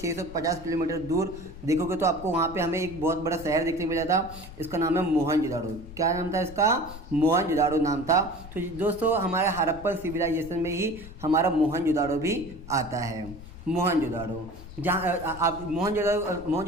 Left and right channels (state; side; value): noise; left; rumble, 15 dB below the sound